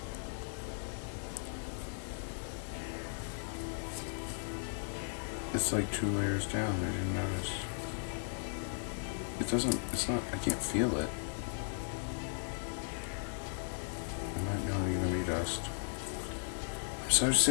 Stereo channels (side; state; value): right; silent; digital silence